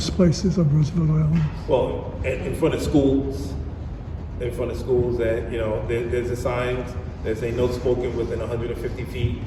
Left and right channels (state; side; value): identical; both; correlation 1.00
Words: places on Roosevelt Island? Well, in front of schools, that, there's a signs that say no smoking within 150 feet,